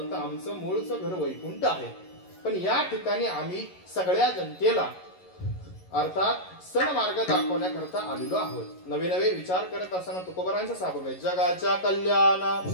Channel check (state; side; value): late; right; 11 ms